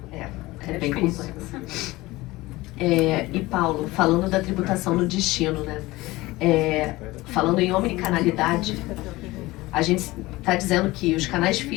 É bem difícil. complexo. E Paulo, falando da tributação no destino, né? Falando em omnicanalidade, a gente está dizendo que os canais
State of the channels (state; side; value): quieter; right; 19.8 dB